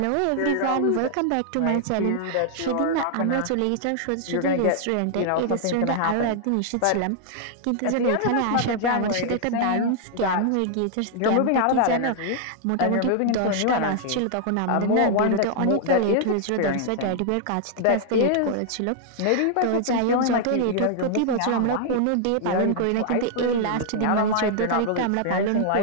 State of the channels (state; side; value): different; both; correlation -0.01